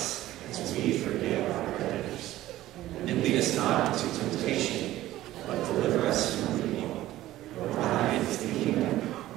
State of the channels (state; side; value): quieter; left; 15.1 dB